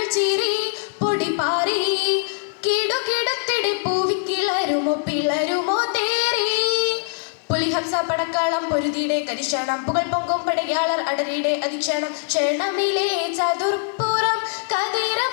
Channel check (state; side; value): silent; right; digital silence